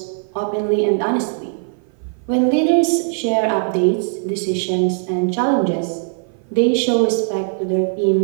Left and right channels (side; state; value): left; silent; 57 dB below the other